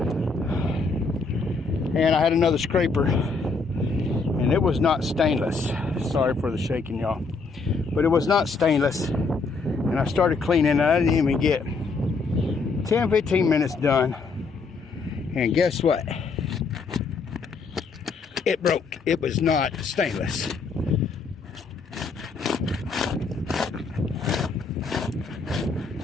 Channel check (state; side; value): quieter; right; 4.4 dB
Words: and I had another scraper, and it was not stainless. Sorry for the shaking, y'all, but it was not stainless. And I started cleaning, and I didn't even get 10-15 minutes done, and guess what? It broke. It was not stainless.